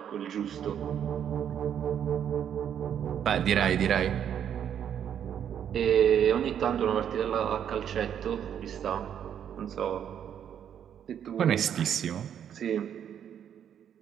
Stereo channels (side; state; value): left; quieter; 9.1 dB